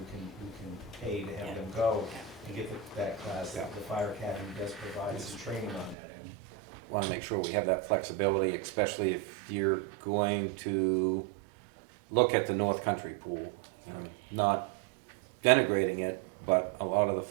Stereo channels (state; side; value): drops out; left; at 6.0 s